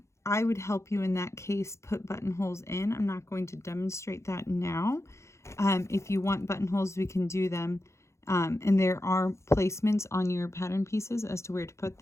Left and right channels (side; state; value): right; late; 0.14 ms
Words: I would help you in that case put buttonholes in. I'm not going to demonstrate that now. If you want buttonholes, we can do them. And there are placements on your pattern pieces as to where to put